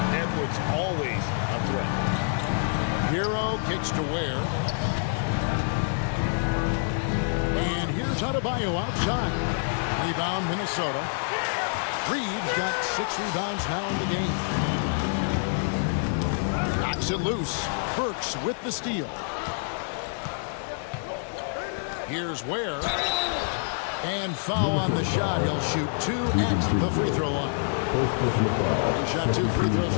Edwards always a threat. Hero kicks to Ware. And here's Adebayo outside. Rebound Minnesota. Reeves got 6 rebounds now in the game. Knocks it loose. Burks with the steal. Here's Ware. And foul on the shot. He'll shoot 2 at the free throw line. He shot 2 free throws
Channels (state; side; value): silent; right; digital silence